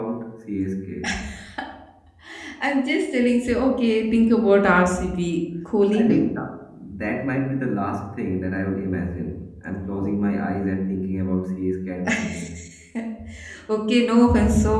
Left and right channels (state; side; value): identical; both; correlation 1.00